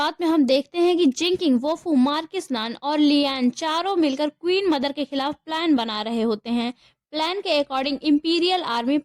में हम देखते हैं कि जिंकिंग, वोफू, मार्किस नान और लियान चारों मिलकर क्वीन मदर के खिलाफ प्लान बना रहे होते हैं। प्लान के अकॉर्डिंग इंपीरियल आर्मी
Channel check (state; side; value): identical; both; correlation 1.00